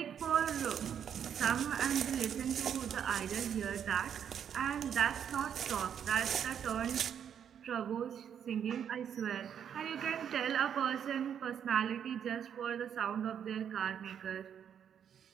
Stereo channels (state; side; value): quieter; left; 8.5 dB